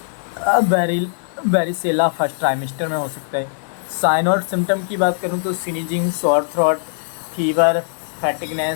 बेरिसेला first trimester में हो सकता है। साइन और सिम्टम की बात करूँ तो sneezing, sore throat, fever,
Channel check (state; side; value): silent; right; 55 dB below the other